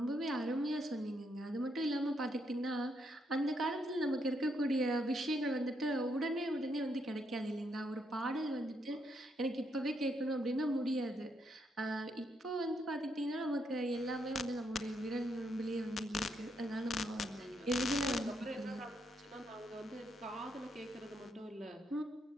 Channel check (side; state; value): both; normal; correlation 0.77